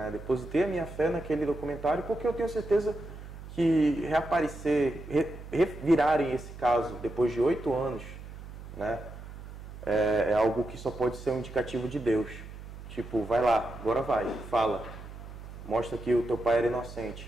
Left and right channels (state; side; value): noise; right; hum, 13 dB below the sound